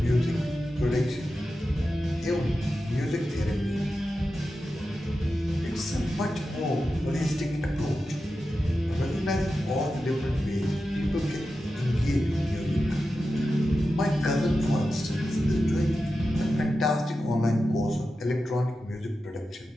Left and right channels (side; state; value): both; normal; correlation 0.91